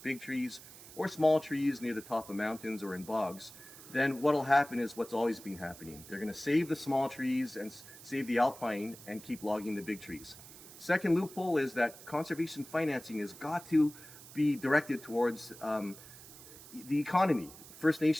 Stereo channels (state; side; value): noise; right; hiss, 17 dB below the sound